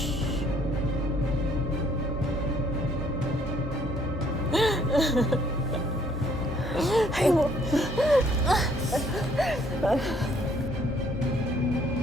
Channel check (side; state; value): both; normal; correlation 0.63